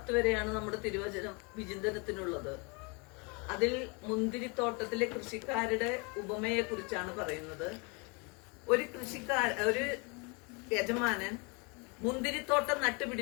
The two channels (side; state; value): right; quieter; 31.5 dB